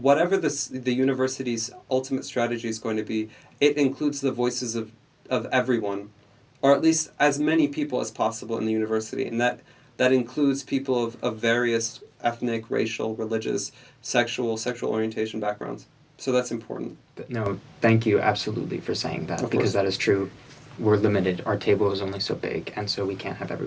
the university's ultimate strategy is going to be, it includes the voices of everyone, or at least as many people as possible in the university, and that includes people of various ethnic, racial, religious, sexual orientation backgrounds. So that's important. But no, thank you absolutely for saying that, Of because course. that is true. We're limited. Our table is only so big, and so we can't have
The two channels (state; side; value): identical; both; correlation 1.00